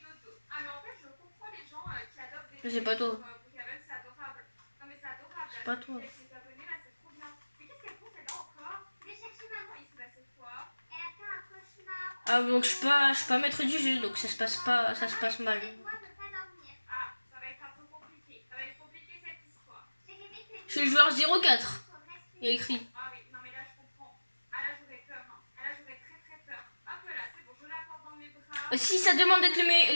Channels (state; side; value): inverted; both; correlation -1.00